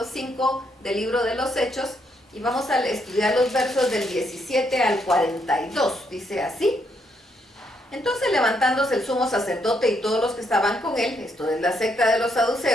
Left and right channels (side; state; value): both; normal; correlation 0.75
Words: 5 del libro de los Hechos y vamos a estudiar los versos del 17 al 42. Dice así: entonces, levantándose el sumo sacerdote y todos los que estaban con él, esto es la secta de los